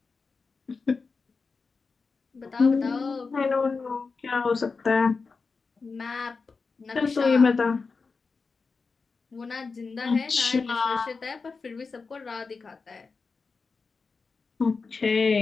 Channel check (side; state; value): right; quieter; 4.5 dB